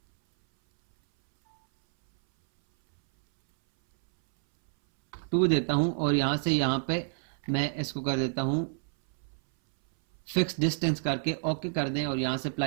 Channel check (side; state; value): left; silent; 59 dB below the other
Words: टू देता हूं और यहां से यहां पे मैं इसको कर देता हूं फिक्स डिस्टेंस करके ओके कर दें और यहां से